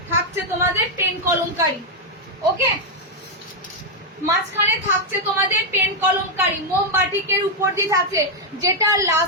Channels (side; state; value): both; normal; correlation 0.00